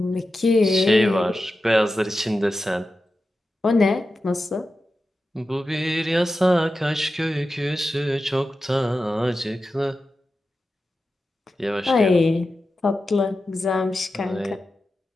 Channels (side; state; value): both; normal; correlation 0.92